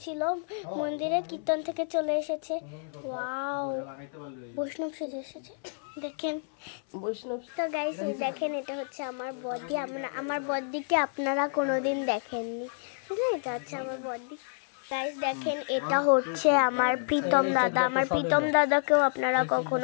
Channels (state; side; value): silent; right; 58 dB below the other